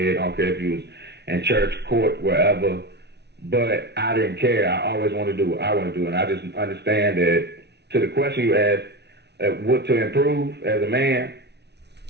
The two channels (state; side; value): late; left; 0.49 ms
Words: I don't care if you was in church, court, wherever. But I didn't care. I always wanted to do what I want to do, and I just understand that. To the question you asked, what to improve as a man,